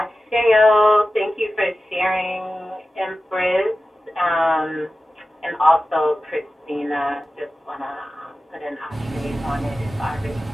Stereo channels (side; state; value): both; normal; correlation 0.94